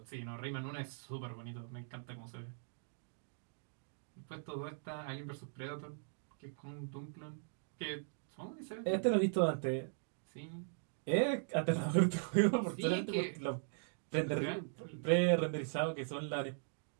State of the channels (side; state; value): left; silent; digital silence